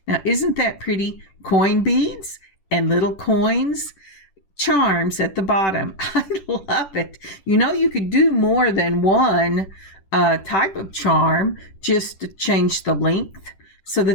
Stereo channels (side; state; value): right; late; 10 ms